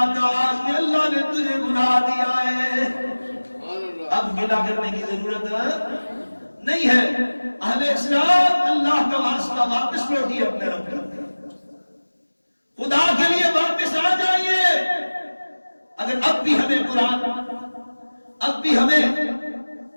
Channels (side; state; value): both; inverted; correlation -1.00